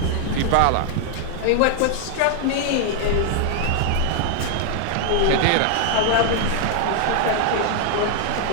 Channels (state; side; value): different; both; correlation 0.00